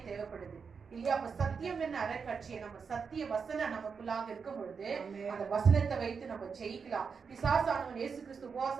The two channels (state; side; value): quieter; left; 5.7 dB